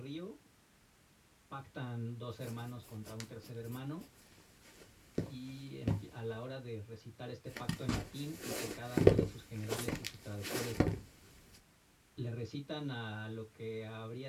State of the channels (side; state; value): both; identical; correlation 1.00